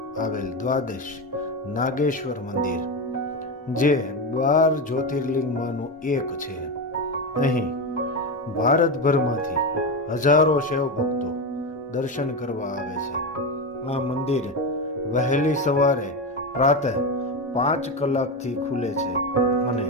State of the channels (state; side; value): normal; both; correlation 0.15